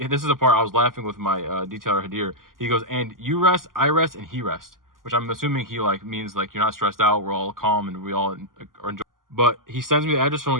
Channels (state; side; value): late; left; 0.91 ms